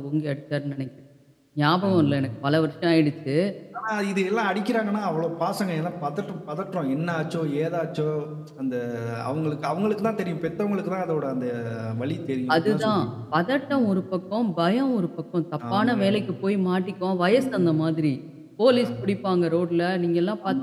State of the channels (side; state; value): both; identical; correlation 1.00